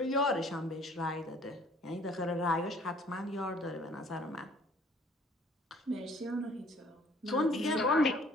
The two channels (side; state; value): both; normal; correlation 0.57